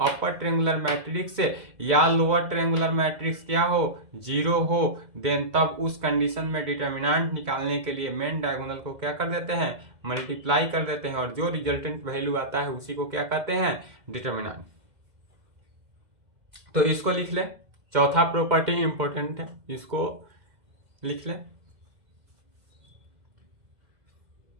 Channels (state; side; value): late; left; 2.0 ms